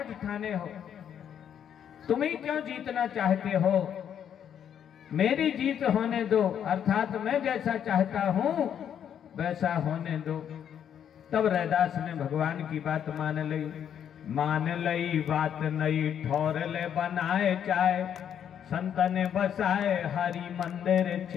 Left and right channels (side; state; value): right; quieter; 9.0 dB